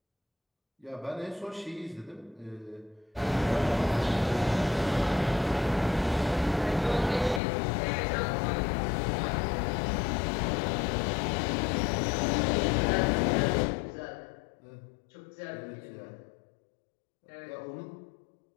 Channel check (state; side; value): drops out; right; at 7.4 s